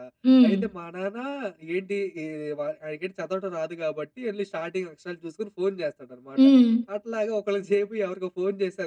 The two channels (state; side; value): identical; both; correlation 1.00